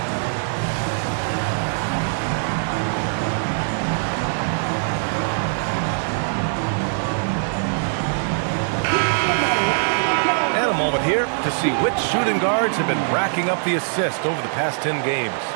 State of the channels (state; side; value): silent; left; digital silence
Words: Here to see which shooting guards have been racking up the assist over the past 10 games.